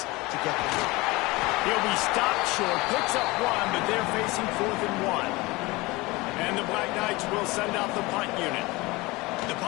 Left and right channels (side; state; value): right; quieter; 22.5 dB